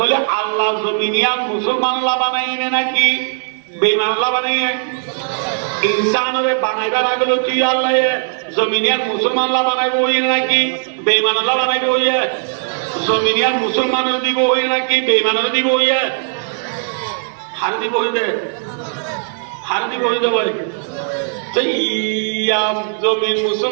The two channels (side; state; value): left; silent; digital silence